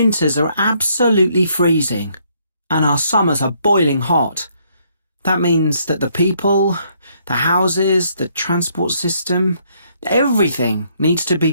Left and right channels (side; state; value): both; inverted; correlation -0.69